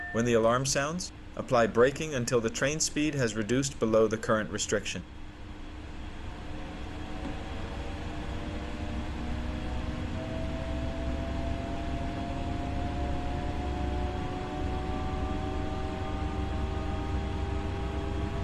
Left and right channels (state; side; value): identical; both; correlation 1.00